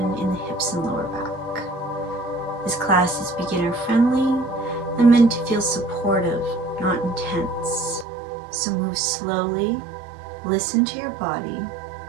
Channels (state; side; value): drops out; left; at 8.1 s